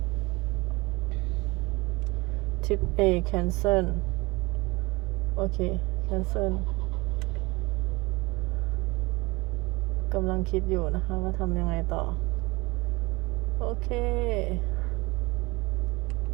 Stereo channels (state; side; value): quieter; left; 24.0 dB